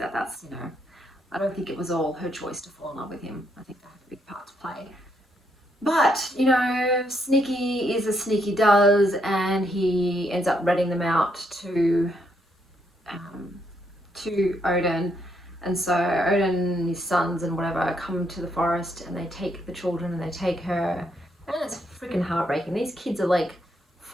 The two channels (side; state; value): both; normal; correlation 0.75